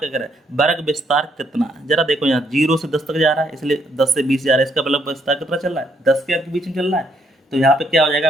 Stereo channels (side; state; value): both; normal; correlation 0.72